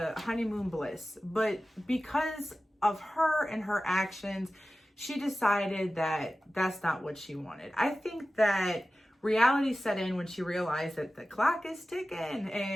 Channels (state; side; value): normal; both; correlation 0.95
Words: honeymoon bliss, but because of her and her actions, she decided that that's not what she wanted. I think that reality set in when she realized that the clock is ticking